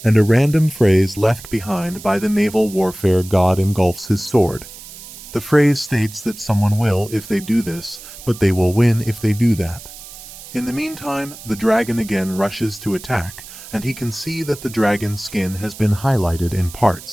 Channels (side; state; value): right; noise; hiss, 16 dB below the sound